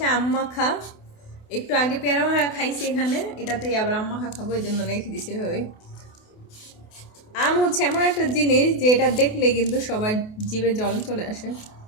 আম মাখা। একটু আগে পেয়ারা মাখা খাইছি এখানে, এটাতেই আবার আম মাখা খাবো, এই জন্য রেখে দিছি এভাবেই। আম হচ্ছে এমন একটা জিনিস যে এটা দেখলে কিন্তু সবার জিভে জল চলে আসে।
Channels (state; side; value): late; right; 28 ms